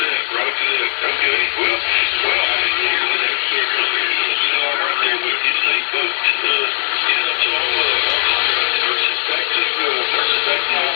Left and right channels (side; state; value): right; silent; digital silence